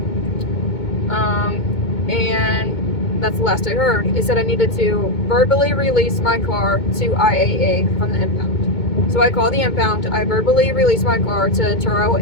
And that's the last I heard. It said I needed to verbally release my car to IAA from the impound. So I call the impound, I verbally release my car to Turo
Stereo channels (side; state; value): right; late; 2.2 ms